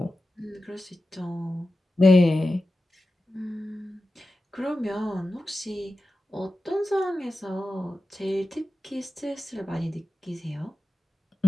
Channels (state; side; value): normal; both; correlation 0.93